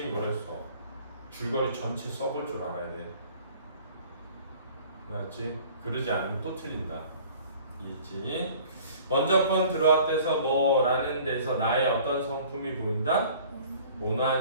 뭐라 했어? 줄거리 전체 써볼 줄 알아야 돼. 알았지? 그러지 않으면 또 틀린다. 이해했지? 먼저 번 들어왔대서 뭐라는 데서 나의 어떤 성품이 보인다?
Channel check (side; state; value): both; inverted; correlation -0.50